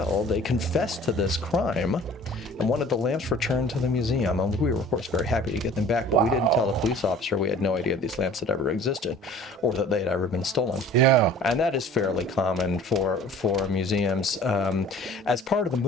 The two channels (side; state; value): both; normal; correlation 0.48